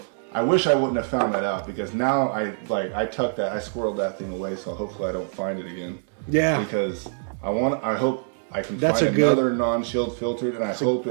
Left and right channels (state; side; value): silent; left; digital silence